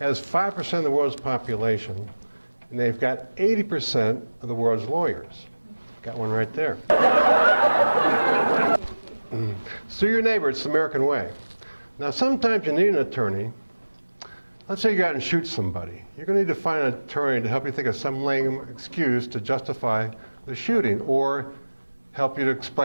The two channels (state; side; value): inverted; both; correlation -1.00